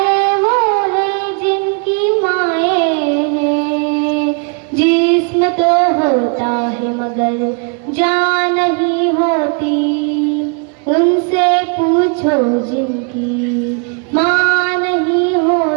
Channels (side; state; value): left; quieter; 37.6 dB